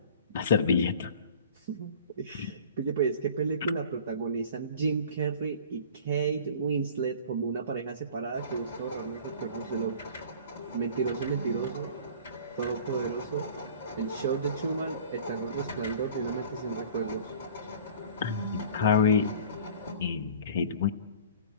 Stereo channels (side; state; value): both; inverted; correlation -0.44